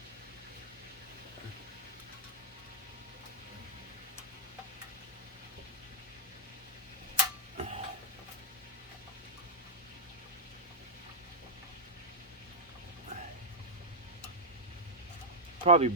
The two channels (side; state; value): both; normal; correlation -0.06